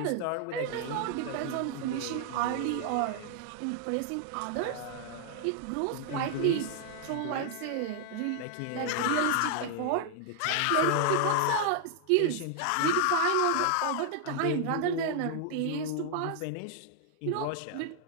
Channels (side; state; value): both; different; correlation 0.00